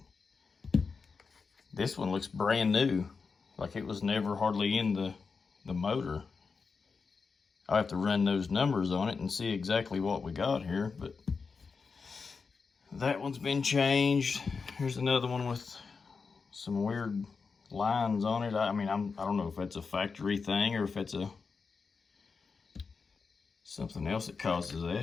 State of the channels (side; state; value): right; quieter; 5.0 dB